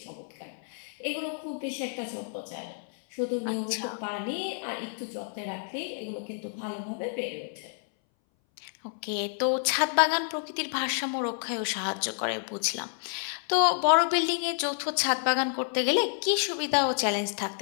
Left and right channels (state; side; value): silent; right; 58 dB below the other